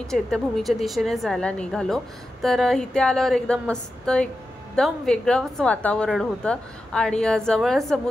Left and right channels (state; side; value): normal; both; correlation 0.91